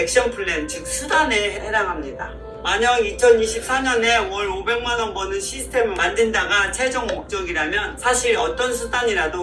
플랜, 즉 수단에 해당합니다. 만약 2024년에 월 500만원 버는 시스템을 만든다가 최종 목적이라면 사실 어떤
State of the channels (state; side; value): identical; both; correlation 1.00